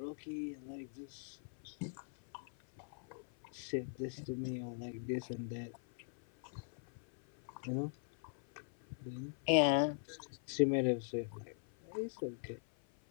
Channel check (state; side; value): silent; right; 50 dB below the other